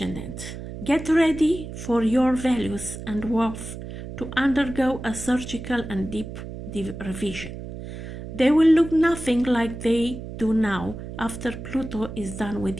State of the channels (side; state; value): right; noise; hum, 10 dB below the sound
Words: get ready for your values and worth to undergo a surgical and deep revision. They will look nothing like they do now after Pluto is done